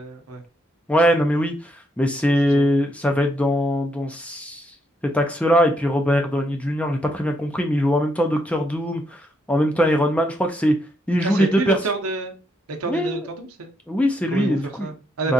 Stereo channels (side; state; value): both; normal; correlation 0.77